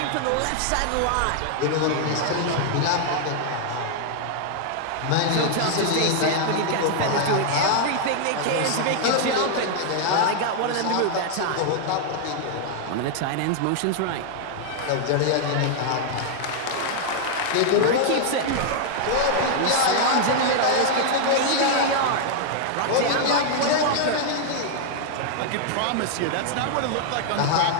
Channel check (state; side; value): different; both; correlation 0.00